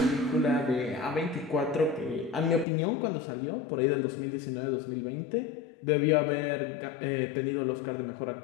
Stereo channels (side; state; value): right; drops out; at 2.7 s